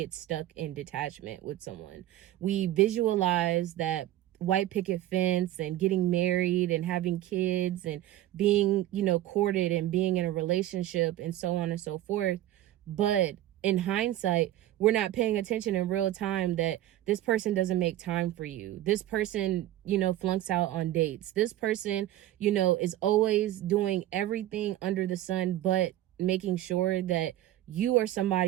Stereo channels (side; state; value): left; quieter; 13.8 dB